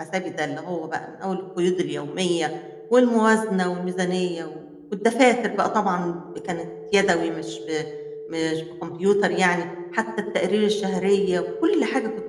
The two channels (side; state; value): both; identical; correlation 1.00